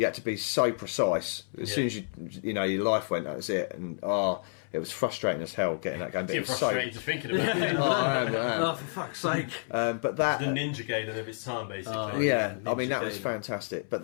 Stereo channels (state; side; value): silent; right; 58 dB below the other